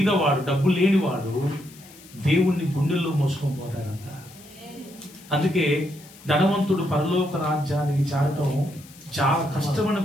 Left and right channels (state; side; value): noise; left; hiss, 22 dB below the sound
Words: డబ్బు లేనివాడు దేవుణ్ణి గుండెల్లో మోసుకొని పోతాడంట. అందుకే ధనవంతుడు పరలోక రాజ్యానికి చేరటం చాలా కష్టమని